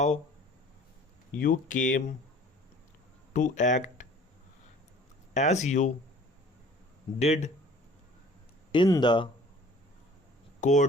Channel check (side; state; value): both; normal; correlation 0.50